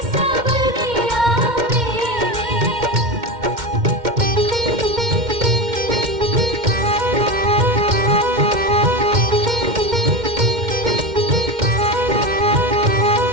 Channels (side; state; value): left; late; 2.1 ms